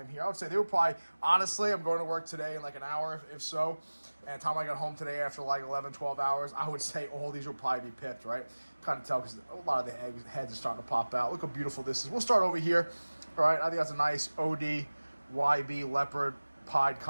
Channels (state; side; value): inverted; both; correlation -1.00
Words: here. I would say they were probably, honestly, I'm going to work today in like an hour, if so. And the time I got home today after like 11, 12 hours, I would say all these will probably be pipped, right? Kind of tell because a lot of the heads are starting to pop out. Look how beautiful this is. We'll start over here. All right. I think that's a nice OD. YB leopard pied